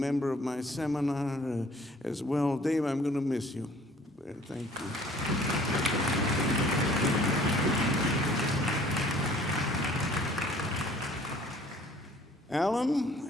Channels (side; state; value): both; normal; correlation 0.54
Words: of my seminar as well. Dave, I'm going to miss you. Thank you.